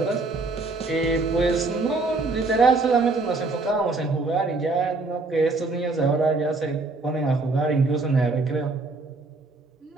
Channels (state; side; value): quieter; left; 3.5 dB